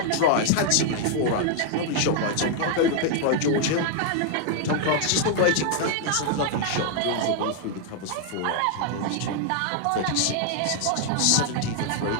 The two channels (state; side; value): different; both; correlation 0.00